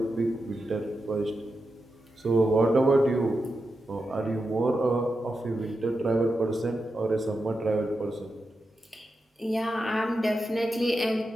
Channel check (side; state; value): both; normal; correlation 0.89